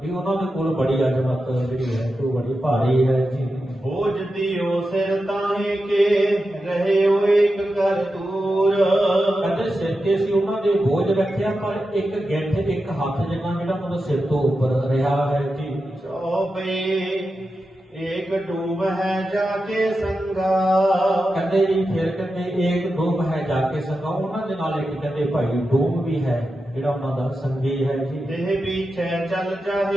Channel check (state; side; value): normal; both; correlation 0.90